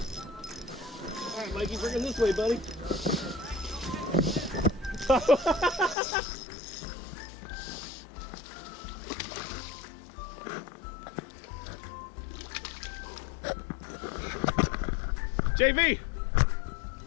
All right, Mikey, bring him this way, buddy. JV!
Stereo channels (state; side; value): drops out; right; at 6.0 s